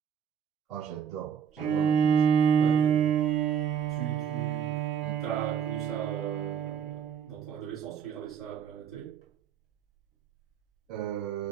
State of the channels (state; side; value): quieter; left; 8.1 dB